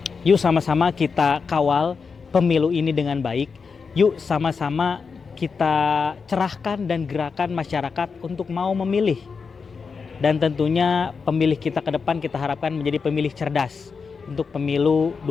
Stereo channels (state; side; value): quieter; right; 5.3 dB